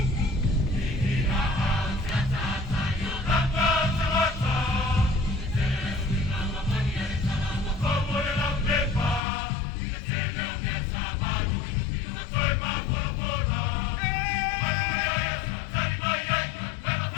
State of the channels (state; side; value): drops out; right; at 9.2 s